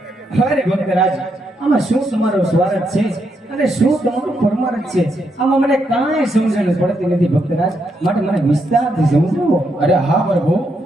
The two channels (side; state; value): both; normal; correlation 0.79